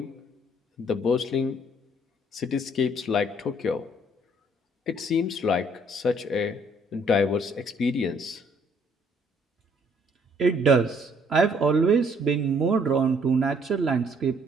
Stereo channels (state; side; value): normal; both; correlation 0.63